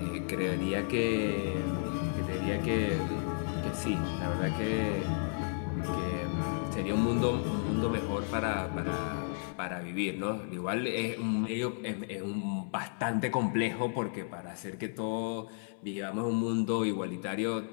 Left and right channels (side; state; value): right; silent; 56 dB below the other